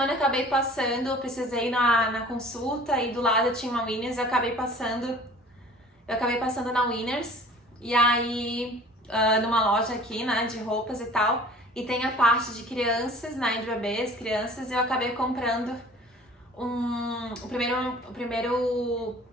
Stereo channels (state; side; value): normal; both; correlation 0.47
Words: eu acabei passando, eu precisei ir na consulta e do lado tinha uma Winners, eu acabei passando na Winners. E aí, numa loja aqui, né, de roupas e tal, e tem a parte de crianças, né, de bebês, crianças, e eu acabei comprando o primeiro